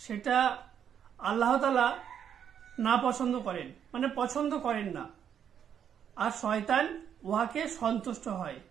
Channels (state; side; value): quieter; left; 8.6 dB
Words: আল্লাহ তাআলা না পছন্দ করেন, মানে পছন্দ করেন না, আর শয়তান উহাকে সন্তুষ্ট হয়।